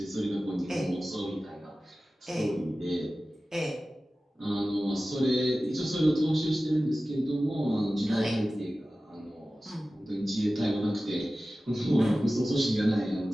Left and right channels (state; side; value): normal; both; correlation 0.96